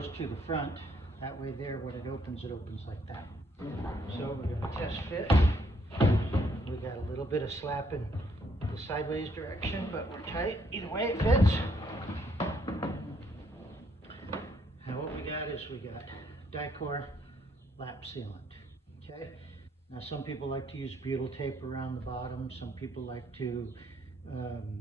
to the front, that way there when it opens like that. So we're going to test fit. We got a little bit of slap in the sideways direction, but we're tight. Either way it fits. Now what we got is we got Dicor lap sealant. Okay. Now some people like to use butyl tape around the bottom. Some people like to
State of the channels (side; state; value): both; normal; correlation 0.70